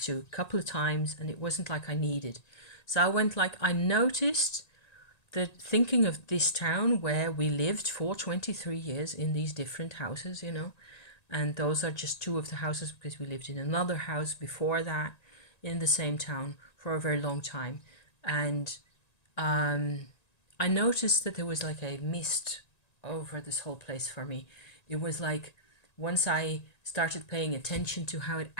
to a couple of times, and it wasn't like I needed. So I went like, I noticed that thinking of this town where we lived for 23 years in these different houses, you know, and those are just two of the houses because we lived in another house before that in the same town for a very long time. And I noticed that there was like a mist over this whole place for me. It was like, once I started paying attention to how it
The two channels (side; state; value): right; late; 1.9 ms